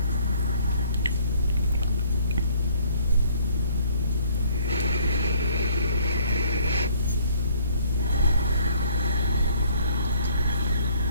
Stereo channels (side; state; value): both; inverted; correlation -0.60